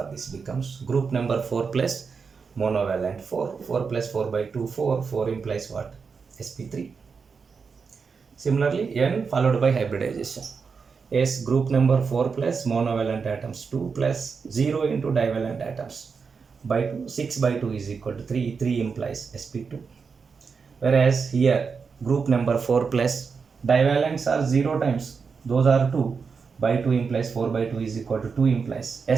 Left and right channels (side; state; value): left; quieter; 5.4 dB